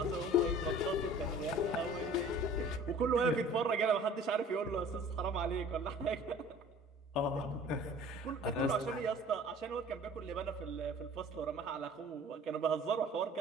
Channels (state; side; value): normal; both; correlation 0.47